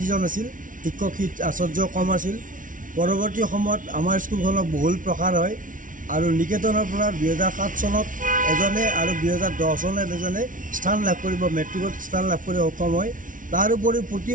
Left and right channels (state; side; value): late; left; 0.38 ms